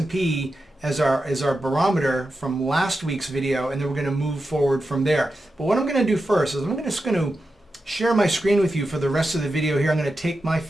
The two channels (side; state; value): both; normal; correlation 0.90